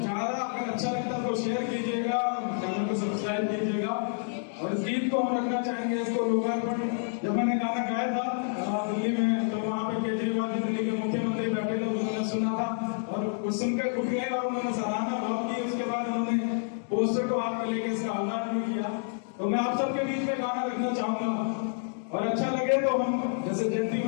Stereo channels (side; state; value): right; silent; digital silence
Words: अगर अच्छा लगता है तो शेयर कीजिएगा, चैनल को सब्सक्राइब कीजिएगा। और इस गीत को हम रखना चाहेंगे, इसको लोकार्पण जब मैंने गाना गाया था दिल्ली में, तो वहाँ पे केजरीवाल जी दिल्ली के मुख्यमंत्री बैठे थे, उन्होंने सुना था और कुछ सुनकर उठ गए और उन्होंने सराहना भाव की। उसके बाद उन्होंने पोस्टर को हाथ में लेकर इसका आह्वान भी किया। तो मैं आप सबके बीच में गाना रखना चाहूंगा, और अच्छा लगे तो हम जैसे जयंती